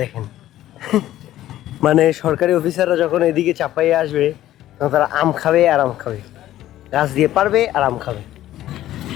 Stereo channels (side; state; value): right; quieter; 13.6 dB